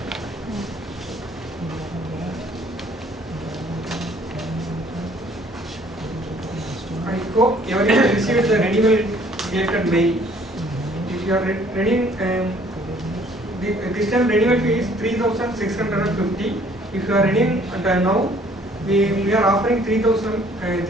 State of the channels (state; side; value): normal; both; correlation 0.59